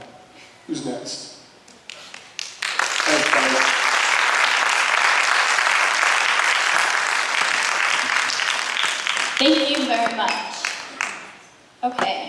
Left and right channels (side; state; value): both; identical; correlation 1.00